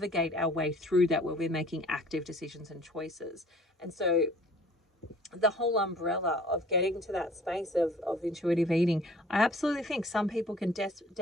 our way through that, where we're making active decisions and choices. And so the whole umbrella of getting to that space of intuitive eating, I absolutely think some people can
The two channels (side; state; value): both; normal; correlation 0.51